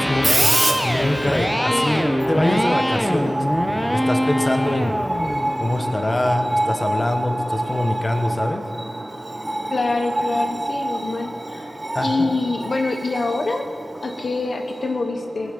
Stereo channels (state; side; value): normal; both; correlation 0.97